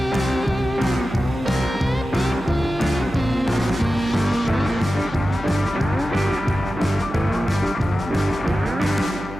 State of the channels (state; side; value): noise; right; hum, 14 dB below the sound